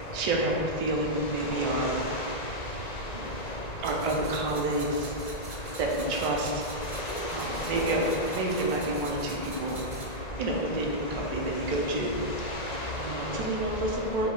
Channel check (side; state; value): right; late; 1.7 ms